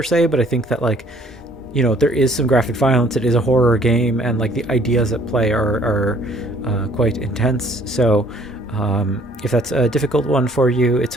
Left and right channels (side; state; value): both; normal; correlation 0.59